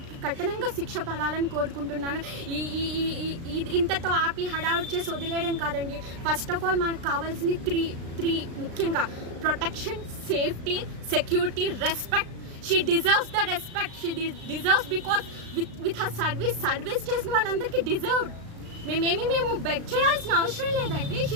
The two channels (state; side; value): late; left; 36 ms